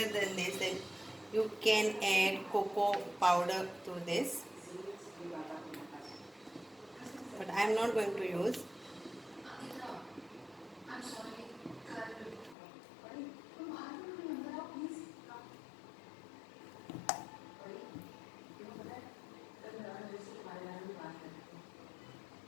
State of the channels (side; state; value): right; drops out; at 12.6 s